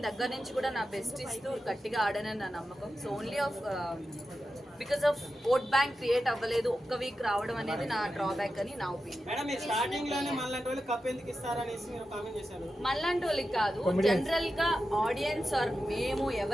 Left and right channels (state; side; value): normal; both; correlation 0.91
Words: దగ్గర నుంచి కూడా నా బెస్ట్ ఇస్తూ గట్టిగా ఆడానని నా నమ్మకం. So only because of vote bank create అవ్వలేదు, ఒక్క వీక్ రావడం అనేది నా డ్రాబ్యాక్ అని నా ఒపీనియన్. మళ్ళంటి వాళ్ళకి కాదు, జనరల్ గా ఆడియన్స్ ఆర్ మేము